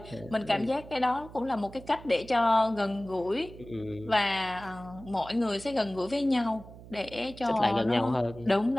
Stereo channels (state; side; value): noise; right; hum, 17 dB below the sound